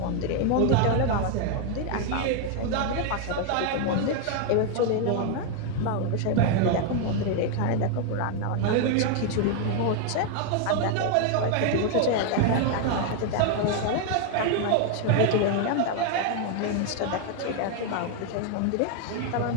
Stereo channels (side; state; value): both; different; correlation 0.01